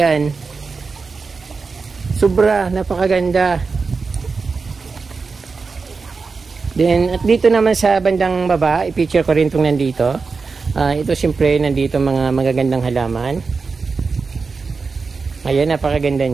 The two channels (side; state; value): left; quieter; 4.6 dB